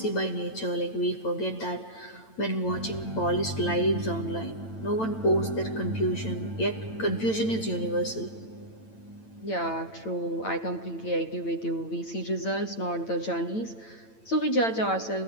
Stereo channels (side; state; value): right; late; 9.0 ms